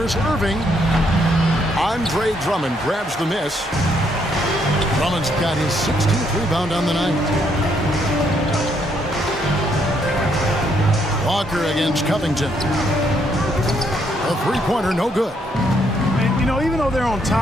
Irving. Andre Drummond grabs the miss. Drummond's got his 16th rebound on the night. Walker against Covington. A three-pointer, no good. And, you know, even though they're on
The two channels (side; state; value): both; normal; correlation 0.72